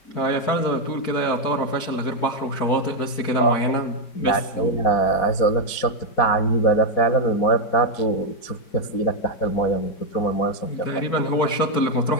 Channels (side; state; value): right; late; 4.6 ms